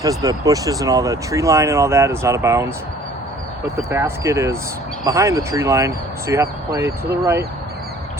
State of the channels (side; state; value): both; normal; correlation 0.53